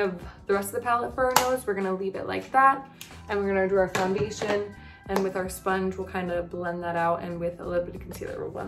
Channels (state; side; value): identical; both; correlation 1.00